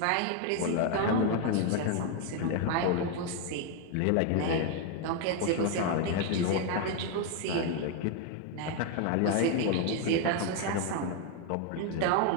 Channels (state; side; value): different; both; correlation 0.01